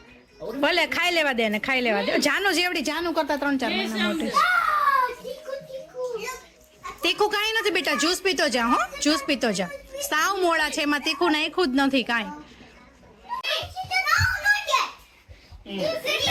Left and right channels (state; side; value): identical; both; correlation 1.00